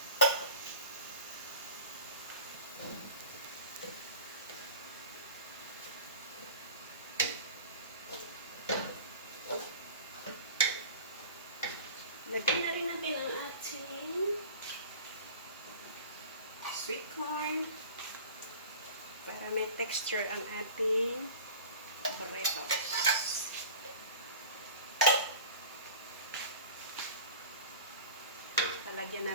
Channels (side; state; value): both; inverted; correlation -0.38